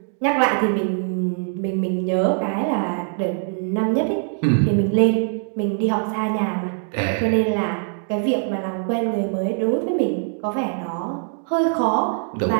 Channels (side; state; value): left; silent; 64 dB below the other